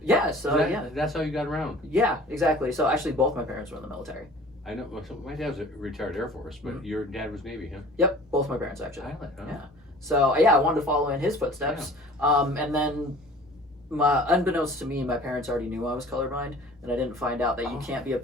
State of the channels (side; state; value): both; normal; correlation 0.46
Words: Yeah. So That's how you got around. Yeah, exactly. So actually, both my parents were in the military. I know. Well, my dad was a retired Air Force, but your dad was Navy, huh? Yep, both my parents actually. Pilot, huh? Yeah. So yeah, I wanted to follow in his footsteps. And then, unbeknownst to me, my parents already knew I was colorblind, and I didn't find out that you can't be a